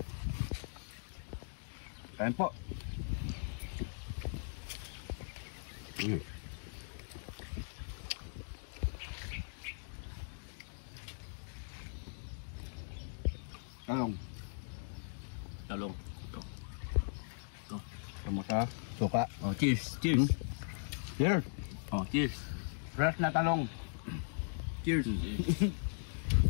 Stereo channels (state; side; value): silent; right; digital silence